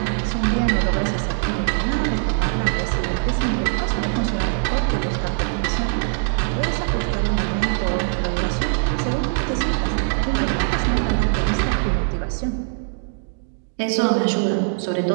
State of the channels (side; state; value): left; silent; digital silence